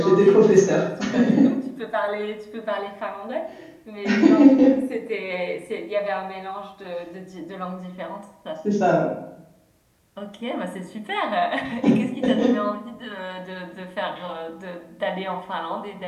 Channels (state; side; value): identical; both; correlation 1.00